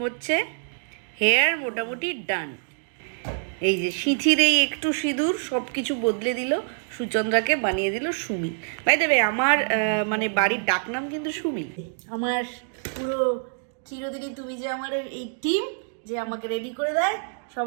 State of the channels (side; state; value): left; silent; digital silence